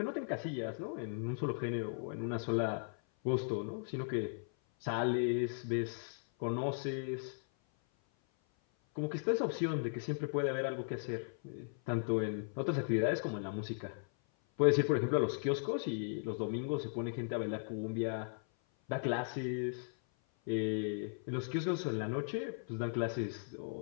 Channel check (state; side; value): silent; right; 53 dB below the other